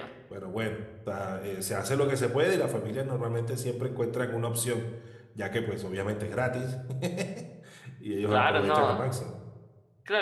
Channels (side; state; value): both; identical; correlation 1.00